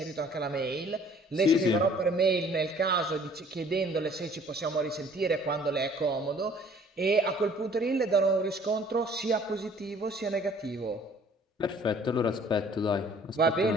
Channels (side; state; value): both; normal; correlation 0.55